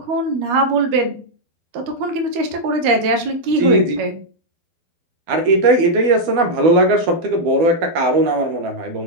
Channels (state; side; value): late; left; 12 ms